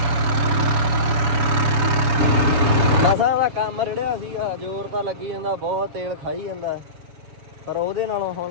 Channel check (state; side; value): late; left; 7.0 ms